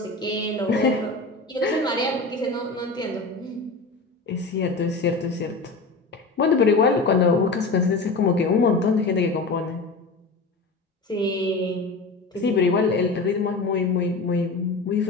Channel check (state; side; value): quieter; right; 3.6 dB